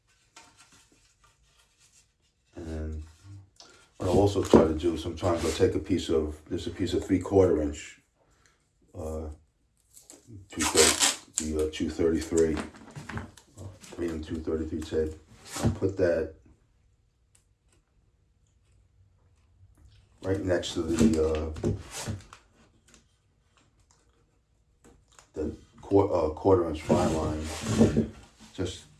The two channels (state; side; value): identical; both; correlation 1.00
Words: And what I'll also try to do sometimes, I'll take a piece of 3/4 inch, 233, 233 tape. I'll put that right next to the quarter inch fine line, just